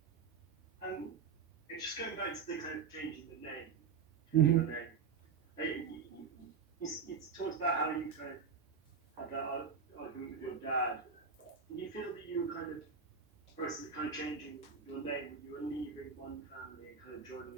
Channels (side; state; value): left; quieter; 5.8 dB